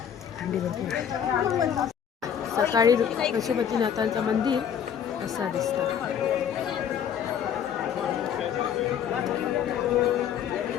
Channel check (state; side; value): quieter; right; 8.6 dB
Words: थंडी भरपूर. सकाळी पशुपतीनाथांचं मंदिर असा दिसतं.